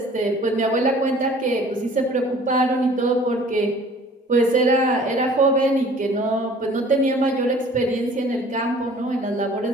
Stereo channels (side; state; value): both; normal; correlation 0.50